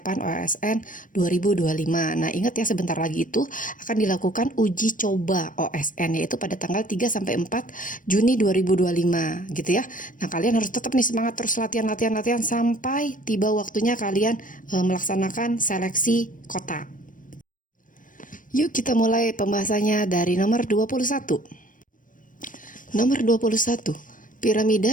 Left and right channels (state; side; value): late; right; 0.38 ms